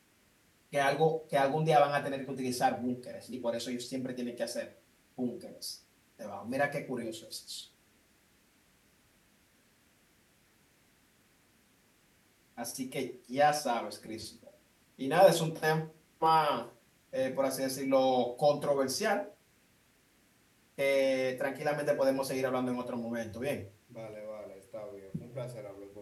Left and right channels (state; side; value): identical; both; correlation 1.00